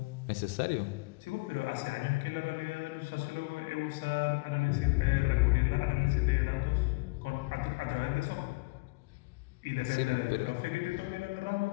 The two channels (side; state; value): right; quieter; 26.3 dB